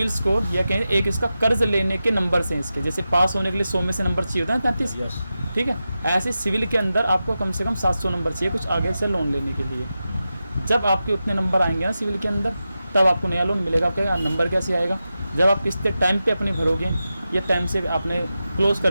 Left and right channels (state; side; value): inverted; both; correlation -0.92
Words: स्कोर या कहें एक इसका कर्ज लेने के नंबर्स हैं इसके। जैसे पास होने के लिए 100 में से नंबर चाहिए होता है 33। ठीक है, ऐसे सिविल के अंदर आपको कम से कम 700 नंबर चाहिए कुछ आगे से लोन लेने के लिए। जब आपके उतने नंबर आएंगे ना सिविल के अंदर, तब आपको नया लोन मिलेगा। आपका नंबर कैसे आएगा? जब आप किस्तें टाइम पे अपनी भरोगे या टाइम से आपने क्लोज